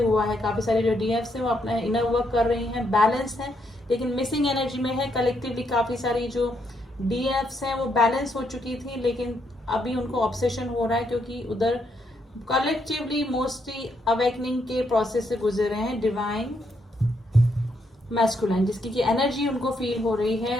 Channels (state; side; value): normal; both; correlation 0.76